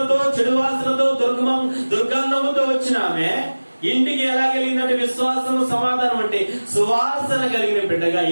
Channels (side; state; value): both; inverted; correlation -1.00